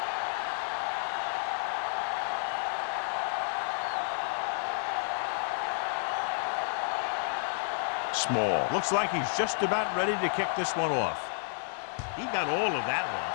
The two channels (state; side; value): silent; right; digital silence